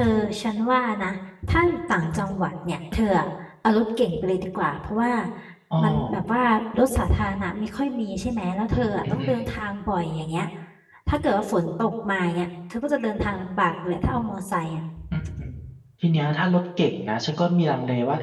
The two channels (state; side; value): identical; both; correlation 1.00